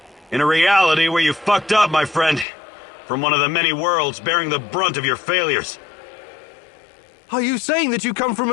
In a reality where you fucked up, my friend. From one of the many worlds bearing the brunt of your failures. Are you saying that you come from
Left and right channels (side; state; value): right; drops out; at 2.5 s